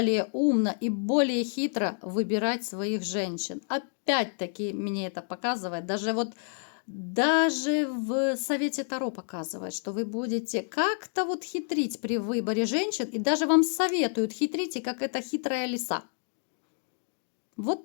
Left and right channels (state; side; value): silent; right; 59 dB below the other